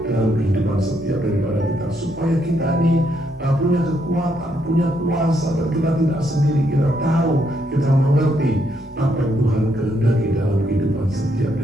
dalam kehidupan setiap daripada kita, supaya kita ini punya kekuatan, punya kuasa, dan kita tidak sendiri. Kita tahu, kita mengerti apa yang Tuhan kehendaki dalam kehidupan setiap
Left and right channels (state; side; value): normal; both; correlation 0.75